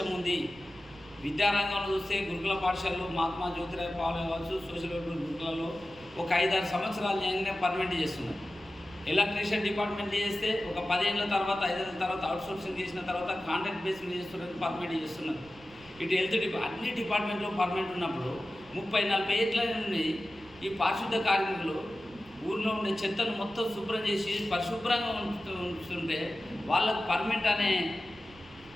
ఉంది. విద్యారంగంలో చూస్తే గురుకుల పాఠశాలలో మహాత్మా జ్యోతిరావు పాలే కావచ్చు, సోషల్ వెల్ఫేర్ గురుకులలో ఒక 5-6 సంవత్సరాలు చేయగానే పర్మనెంట్ చేస్తున్నారు. ఎలక్ట్రీషియన్ డిపార్ట్మెంట్ చేస్తే ఒక 10 ఏళ్ళ తర్వాత 5 ఏళ్ళ తర్వాత అవుట్సోర్సింగ్ చేసిన తర్వాత కాంట్రాక్ట్ బేస్ మీద చేస్తున్నారు, పర్మనెంట్ చేస్తున్నారు. ఇటు హెల్త్ అన్ని డిపార్ట్మెంట్లో పర్మనెంట్ ఉన్నప్పుడు 30-40 ఏళ్ళ నుండి ఈ పారిశుద్ధ కార్మికులు ఊరిలో ఉండే చెత్తను మొత్తం శుభ్రం చేసి పరిశుభ్రంగా ఉంటుంటే వాళ్ళకు పర్మనెంట్ అనే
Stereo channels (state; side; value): noise; right; rumble, 24 dB below the sound